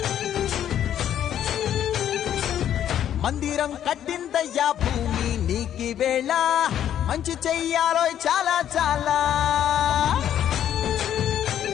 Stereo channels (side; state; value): right; quieter; 10.4 dB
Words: మందిరం కట్టిందయ్యా భూమి నీకి వేళ మంచి చెయ్యాలో చాలా చాలా